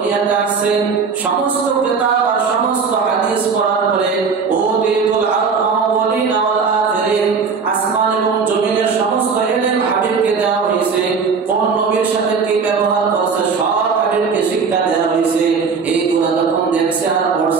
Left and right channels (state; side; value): quieter; left; 5.4 dB